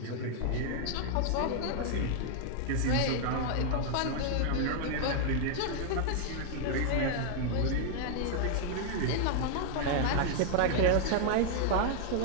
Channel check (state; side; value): different; both; correlation 0.00